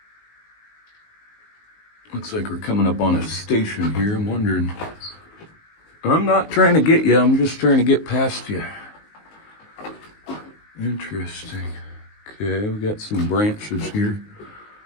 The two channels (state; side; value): late; right; 19 ms